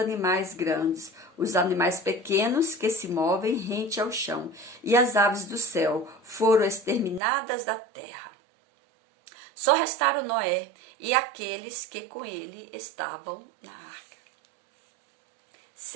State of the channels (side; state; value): left; drops out; at 7.2 s